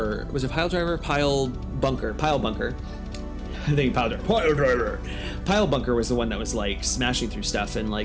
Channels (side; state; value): both; identical; correlation 1.00